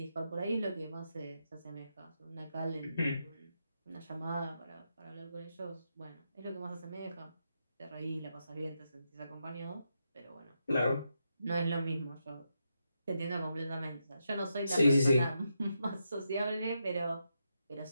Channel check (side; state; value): both; inverted; correlation -0.84